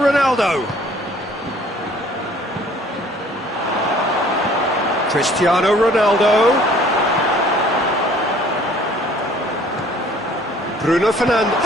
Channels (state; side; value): normal; both; correlation 0.55